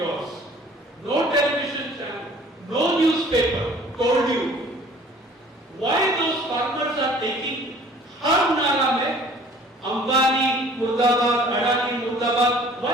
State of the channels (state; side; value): normal; both; correlation 0.52